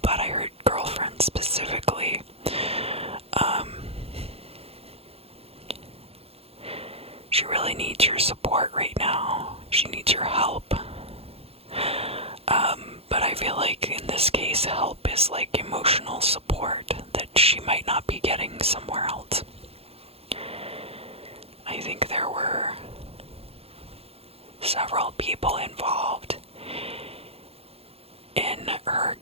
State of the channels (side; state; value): left; late; 0.29 ms